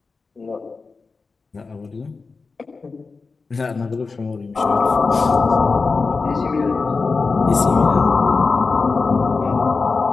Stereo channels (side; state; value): right; quieter; 4.3 dB